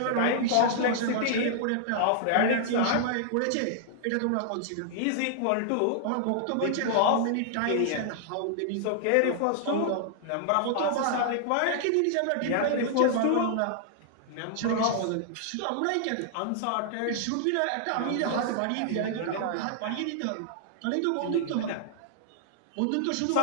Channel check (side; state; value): both; different; correlation -0.01